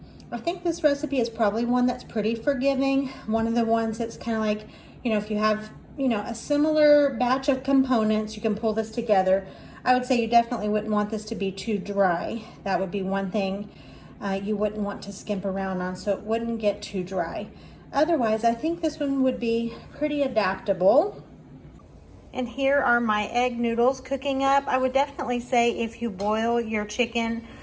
think this recipe is probably one that's pretty forgiving. One of the ones that's kind of like, you know, if you have, you know, a similar batch of components, you can pull this together. I would say you definitely wouldn't want this to be too dry. That would be one thing you wouldn't want to skimp around on, so it wouldn't get too dry. Otherwise, I think this one would be pretty adaptable. And here are my egg noodles cooking up. I would definitely say if you boil your chicken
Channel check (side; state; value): both; identical; correlation 1.00